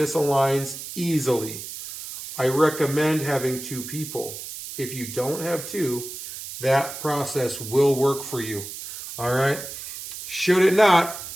easily. I recommend having two people. If you don't have two, that process will work for you. All right? Should it not,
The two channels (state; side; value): noise; right; hiss, 10 dB below the sound